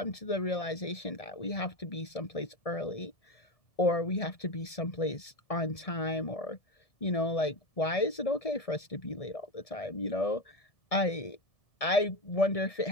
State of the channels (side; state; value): right; late; 1.7 ms